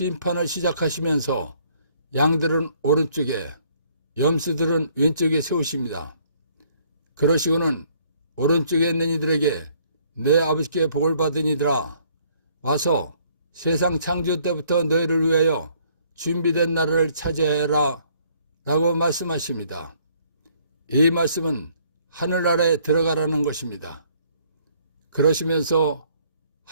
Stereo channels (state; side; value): inverted; both; correlation -0.63